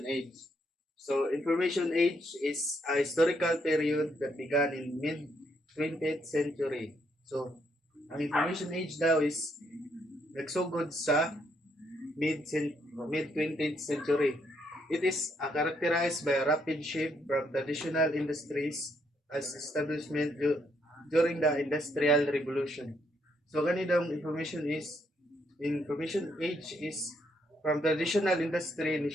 age. So, information age is a historical period that began in mid 20th century. So, ang information age daw is nagsugod sa mid 20th century. It is characterized by a rapid shift from traditional industries as establishment during the Industrial Revolution. So ganitong information age is from traditional industry ni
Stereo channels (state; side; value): normal; both; correlation 0.74